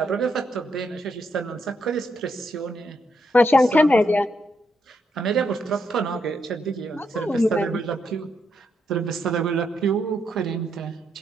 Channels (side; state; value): both; normal; correlation 0.79